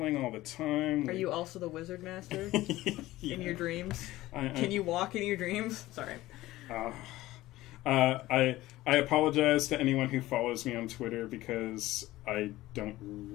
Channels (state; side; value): quieter; right; 17.0 dB